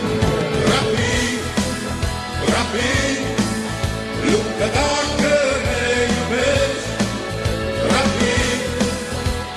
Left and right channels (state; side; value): identical; both; correlation 1.00